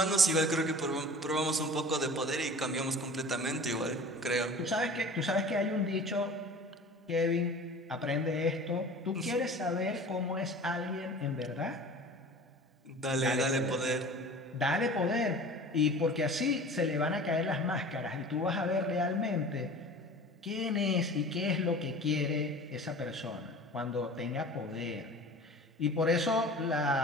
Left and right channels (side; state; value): both; normal; correlation 0.41